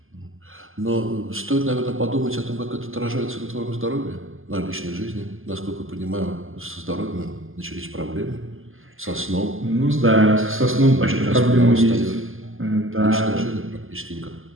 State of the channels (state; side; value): late; left; 0.59 ms